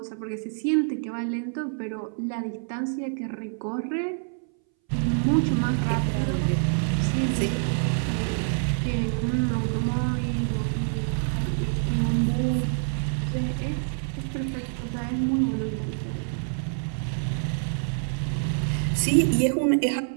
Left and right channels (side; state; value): left; silent; 61 dB below the other